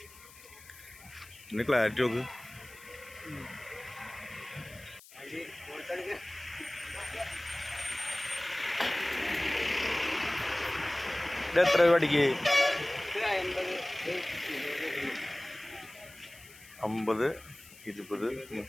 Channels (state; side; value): noise; left; hiss, 21 dB below the sound